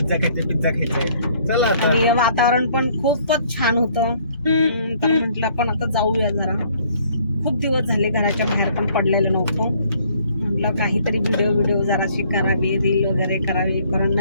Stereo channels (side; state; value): both; inverted; correlation -0.62